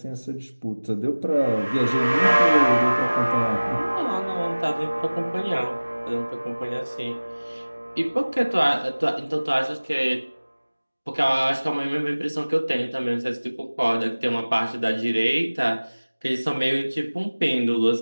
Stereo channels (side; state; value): both; inverted; correlation -1.00